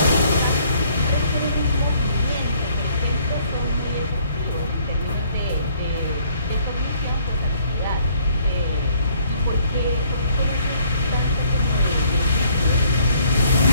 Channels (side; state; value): both; inverted; correlation -0.63